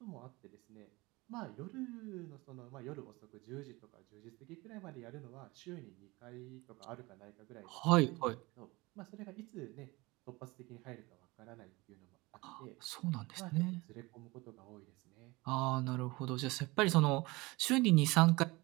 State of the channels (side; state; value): left; quieter; 22.9 dB